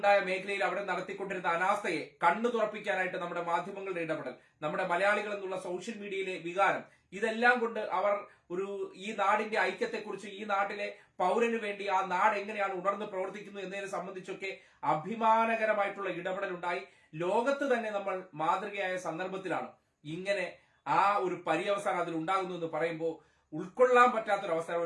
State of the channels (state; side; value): identical; both; correlation 1.00